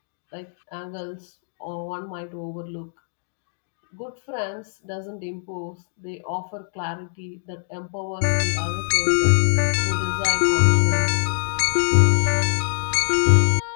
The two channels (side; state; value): right; silent; digital silence